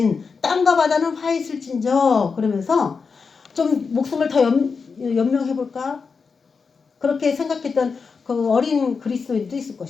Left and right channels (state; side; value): quieter; right; 5.2 dB